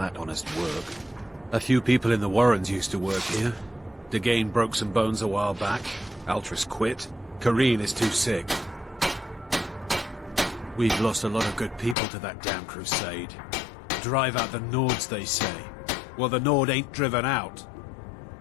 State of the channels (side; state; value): right; drops out; at 12.0 s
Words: honest work. A few people in the Warrens used to work here. Dagain broke some bones a while back. Altris quit. Kareen is too sick. We've lost a lot of good people to that damn crusade. Drive out the Nords, they say. Well, the Nord ain't driven out.